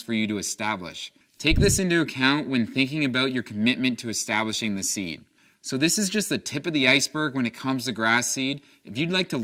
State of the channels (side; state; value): both; identical; correlation 1.00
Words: for you to establish. Take this into account when thinking about your commitment to establishing the seed. So this is just the tip of the iceberg when it comes to grass seed. If you'd like to